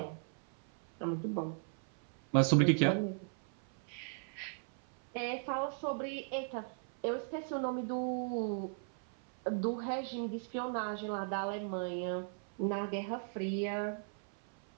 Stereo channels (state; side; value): silent; left; 53 dB below the other